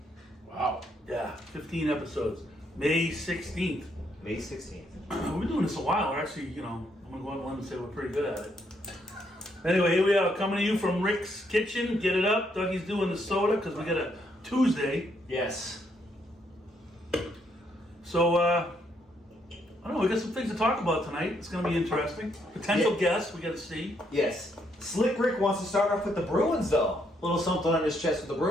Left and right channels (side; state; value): both; normal; correlation 0.74